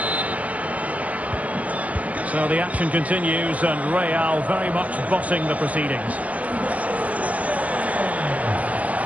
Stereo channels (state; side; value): late; left; 0.068 ms